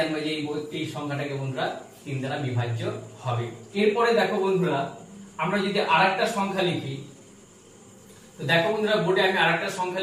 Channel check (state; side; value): identical; both; correlation 1.00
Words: যে এই সংখ্যাটাকে বন্ধুরা 3 দ্বারা বিভাজ্য হবে। এরপরে দেখো বন্ধুরা, আমরা যদি আরেকটা সংখ্যা লিখি, তো দেখো বন্ধুরা বোর্ডে আমি আরেকটা সংখ্যা